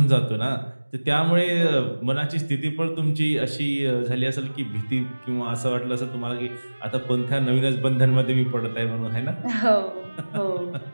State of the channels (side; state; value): both; inverted; correlation -1.00